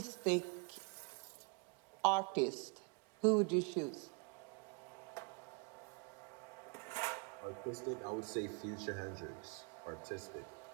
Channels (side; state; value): left; quieter; 35.1 dB